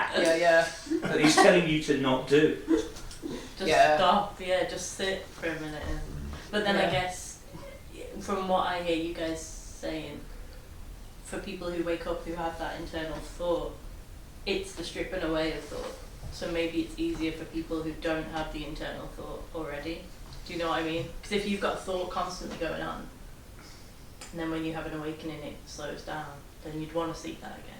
Yeah. That he's telling you to not do. Just Yeah. stop, just sit for a minute. But then I Yeah. guess, from what I hear you guys saying, for people who wake up who have that internal thought, it's the stripping away of thought. So maybe it's easier for people who don't have the internal thought already. Do you know what I mean? Because if you've got thought constantly going on, and then when you have an awakening it slows down, then you'd want to seek that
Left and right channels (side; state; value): both; identical; correlation 1.00